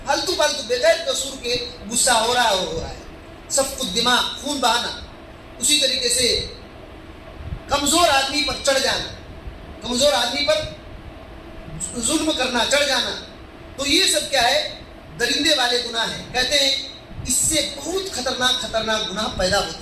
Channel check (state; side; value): identical; both; correlation 1.00